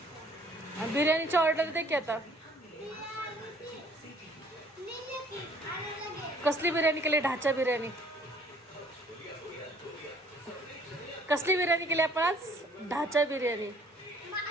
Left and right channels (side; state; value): both; normal; correlation 0.59